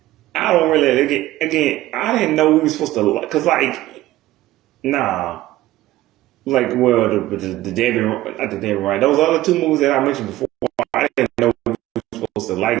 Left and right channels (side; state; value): left; quieter; 15.9 dB